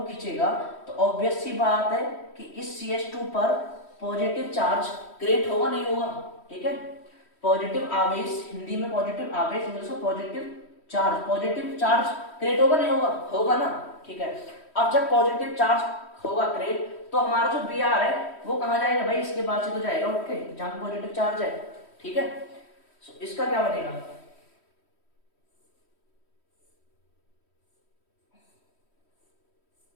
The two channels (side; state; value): right; late; 3.1 ms